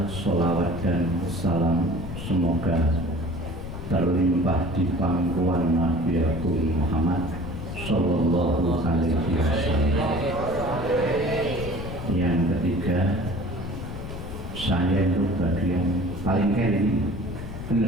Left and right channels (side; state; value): left; noise; rumble, 8 dB below the sound